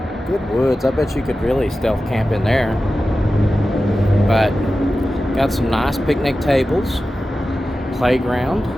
woods. I bet you could really stealth camp in there. But got some nice picnic tables, playground,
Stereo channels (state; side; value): normal; both; correlation 0.94